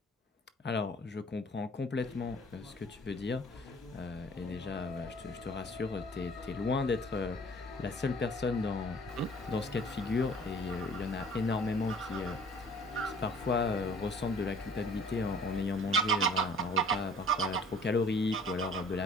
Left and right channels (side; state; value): both; normal; correlation 0.51